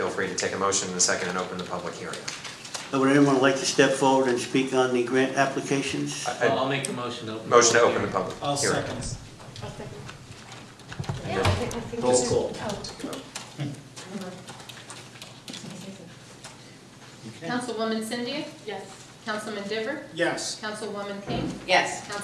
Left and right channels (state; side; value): identical; both; correlation 1.00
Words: free to take a motion in a second and open the public hearing. Would anyone like to step forward and speak on the grant applications? I'll make the motion to open. Motion to open the public I'll hearing. second. And then roll call. Councilwoman Cindy? Yes. Councilman Diver? Yes. Councilwoman King? Yes.